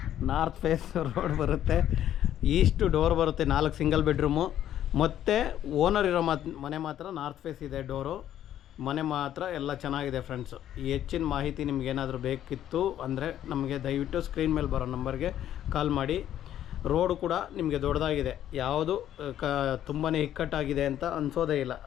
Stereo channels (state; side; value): quieter; right; 11.3 dB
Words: north face road ಬರುತ್ತೆ. ಈಸ್ಟ್ ಡೋರ್ ಬರುತ್ತೆ, 4 ಸಿಂಗಲ್ ಬೆಡ್ರೂಮು. ಮತ್ತು ಓನರ್ ಇರೋ ಮನೆ ಮಾತ್ರ ನಾರ್ತ್ ಫೇಸ್ ಇದೆ ಡೋರು. ಮನೆ ಮಾತ್ರ ಎಲ್ಲ ಚೆನ್ನಾಗಿದೆ ಫ್ರೆಂಡ್ಸು. ಈ ಹೆಚ್ಚಿನ ಮಾಹಿತಿ ನಿಮಗೇನಾದರೂ ಬೇಕಿತ್ತು ಅಂದರೆ ನಮಗೆ ದಯವಿಟ್ಟು ಸ್ಕ್ರೀನ್ ಮೇಲೆ ಬರೋ ನಂಬರ್ಗೆ ಕಾಲ್ ಮಾಡಿ. ರೋಡು ಕೂಡ ನಿಮಗೆ ದೊಡ್ಡದಾಗಿದೆ, ಯಾವುದು ತುಂಬಾ ಇಕ್ಕಟ್ಟಾಗಿದೆ ಅಂತ ಅನಿಸೋದೇ ಇಲ್ಲ.